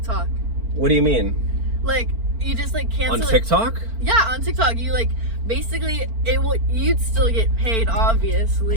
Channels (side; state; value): left; late; 4.4 ms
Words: What do you mean? Like, you just like cancel On it. TikTok? Yeah, on TikTok. You like, basically, you'd still get paid,